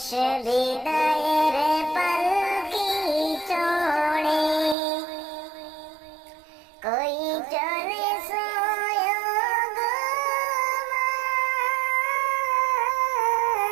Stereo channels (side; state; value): left; drops out; at 4.8 s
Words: বিদায়ের পালকি চড়ে কই চলে